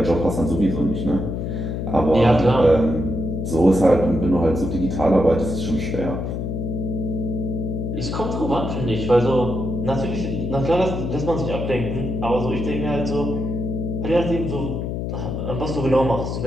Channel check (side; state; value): left; noise; hum, 3 dB below the sound